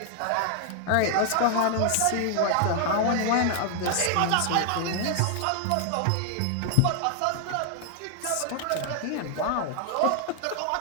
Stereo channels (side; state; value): both; different; correlation 0.00